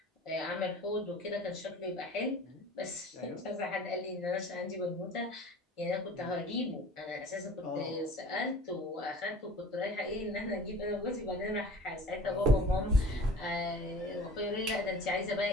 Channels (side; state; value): both; normal; correlation 0.44